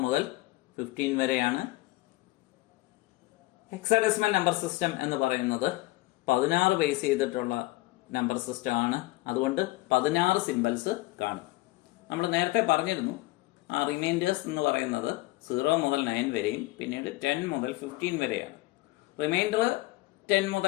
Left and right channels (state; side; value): quieter; right; 19.9 dB